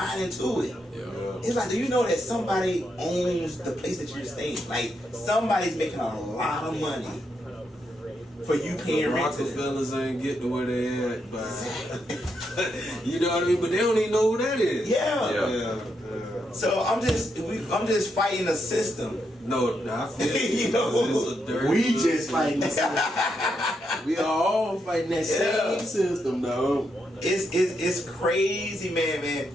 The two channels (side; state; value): both; normal; correlation 0.81